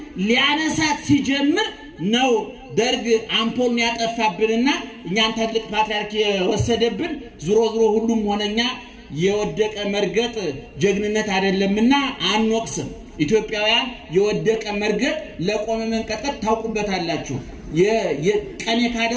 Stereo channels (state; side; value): identical; both; correlation 1.00